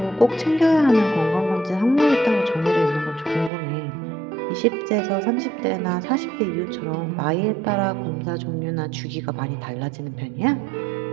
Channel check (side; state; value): left; drops out; at 3.5 s